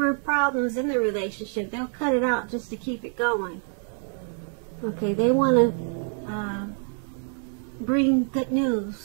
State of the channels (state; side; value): silent; left; 58 dB below the other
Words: problems in the relationship. They'll cut it out just to keep it going. Okay, they want to bring good